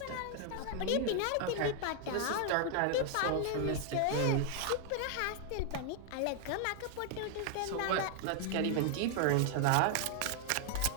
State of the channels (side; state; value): both; different; correlation 0.00